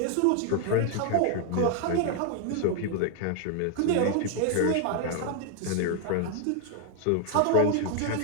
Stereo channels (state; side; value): different; both; correlation 0.00